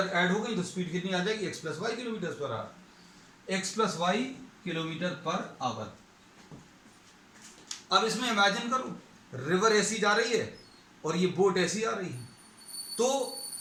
ऐड हो गई तो स्पीड कितनी आ जाएगी, x plus Y kilometre per hour, x plus Y kilometre per hour. अब इसमें इमेजिन करो, रिवर ऐसी जा रही है और ये बोट ऐसी आ रही है, तो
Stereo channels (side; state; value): both; identical; correlation 1.00